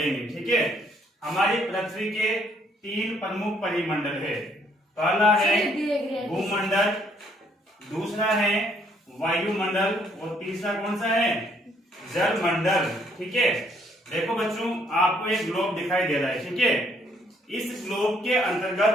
ठीक है, हमारी पृथ्वी के 3 प्रमुख परिमंडल है। पहला है भूमंडल, दूसरा है वायुमंडल और तीसरा कौन सा है? जलमंडल। ठीक है, देखो बच्चों, आपको एक ग्लोब दिखाई दे रहा है। ठीक है, इस ग्लोब के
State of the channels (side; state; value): both; normal; correlation 0.67